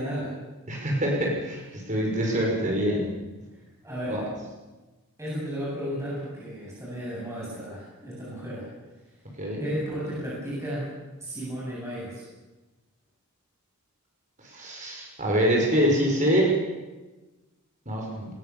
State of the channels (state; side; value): normal; both; correlation 0.34